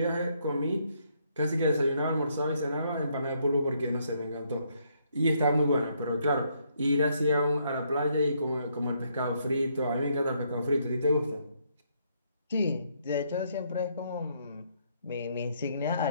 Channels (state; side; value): inverted; both; correlation -0.72